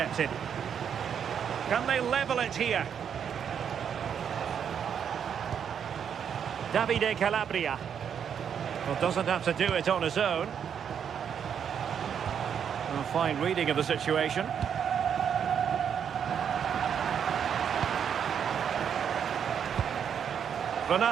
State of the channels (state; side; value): quieter; left; 8.0 dB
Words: Can they level it here? Davide Calabria. Well, doesn't have to do it on his own. A fine reading of the situation.